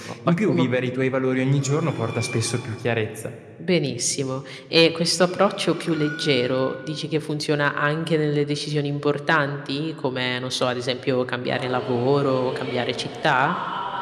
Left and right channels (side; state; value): both; identical; correlation 1.00